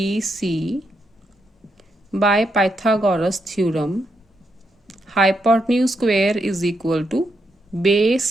by Pythagoras theorem hypotenuse square is equal to base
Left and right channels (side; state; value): both; normal; correlation 0.81